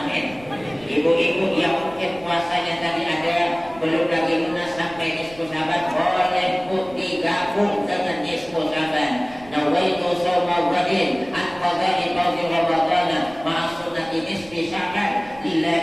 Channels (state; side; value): noise; right; rumble, 22 dB below the sound